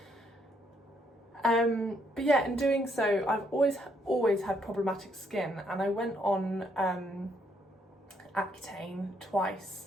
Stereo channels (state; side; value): normal; both; correlation 0.72